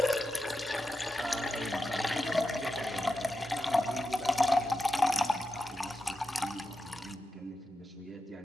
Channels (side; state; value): both; normal; correlation 0.90